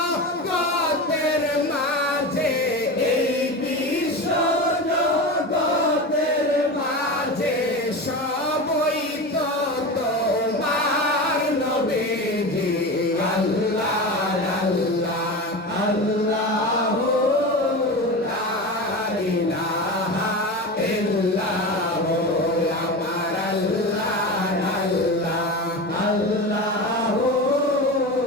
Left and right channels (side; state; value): both; normal; correlation 0.25